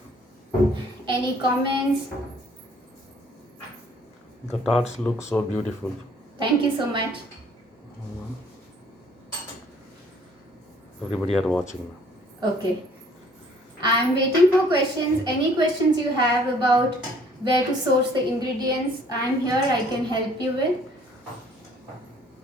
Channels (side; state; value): both; normal; correlation 0.58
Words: Any comments? The tarts look so beautiful. Thank you so much. Everybody are watching now. Okay. I'm waiting for questions. Any questions you have about where to source the ingredients, I'm here. I can help you with.